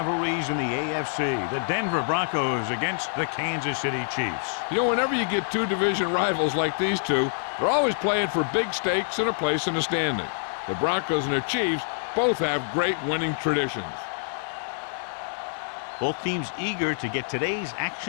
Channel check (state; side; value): silent; right; digital silence